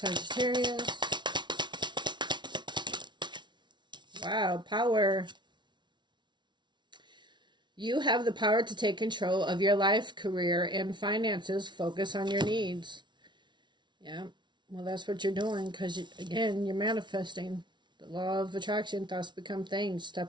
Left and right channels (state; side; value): late; left; 0.22 ms